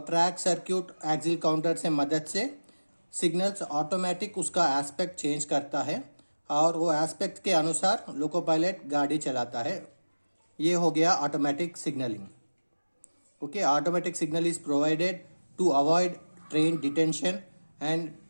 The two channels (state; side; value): inverted; both; correlation -1.00